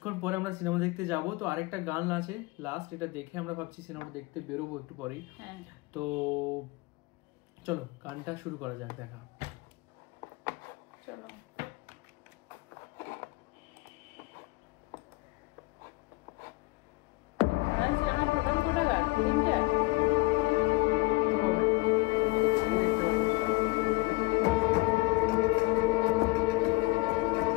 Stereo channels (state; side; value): quieter; right; 23.7 dB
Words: পরে আমরা সিনেমা দেখতে যাব। তো আরেকটা গান আছে লাস্ট, এটা দেখে আমরা ভাবছি সিনেমাটা দেখতে বেরোবো একটু পরেই। তো চলো গানটা শুরু করা যাক, দেখা। চলো। আমার প্রোগ্রাম কোটা গান তিনটা